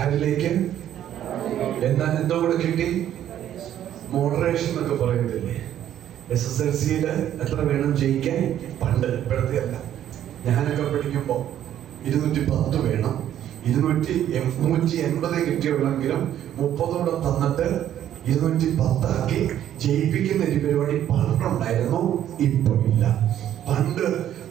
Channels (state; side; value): quieter; left; 11.1 dB